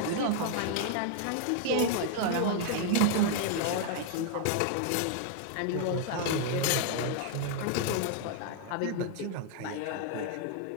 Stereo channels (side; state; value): both; different; correlation 0.00